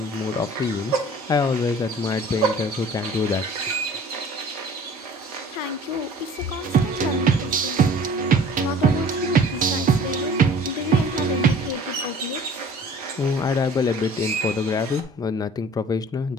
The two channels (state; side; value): normal; both; correlation 0.47